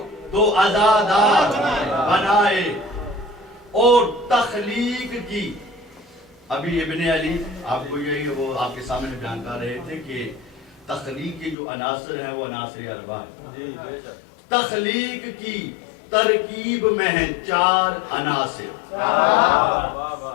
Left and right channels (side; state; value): right; drops out; at 11.6 s